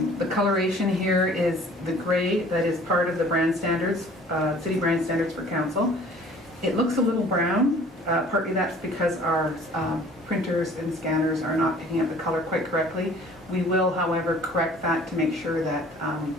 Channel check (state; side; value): normal; both; correlation 0.51